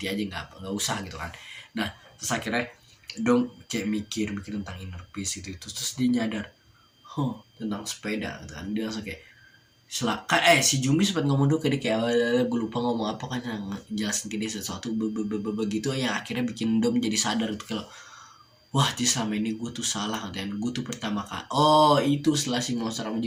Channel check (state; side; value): identical; both; correlation 1.00